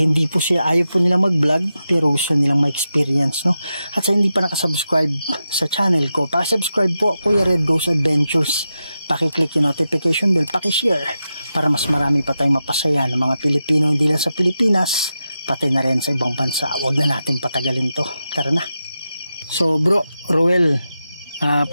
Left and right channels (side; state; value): both; inverted; correlation -0.89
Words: po sila, ayaw po nilang mag-vlog pero gusto nilang ma-experience, no? At sa hindi pa nakasubscribe sa channel ko, pakisubscribe po, Kuya Red Goes Adventures. Paki-click yung notification bell, paki-share para mas marami pa tayong mapasaya ng mga Pilipino, hindi lang sa Pilipinas, pati na rin sa ibang bansa. Huwag na natin patagalin to, tara na. So bro, Ruel,